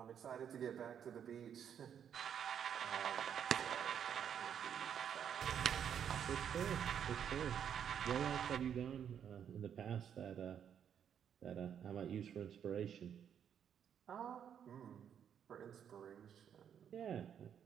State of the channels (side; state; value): left; quieter; 8.6 dB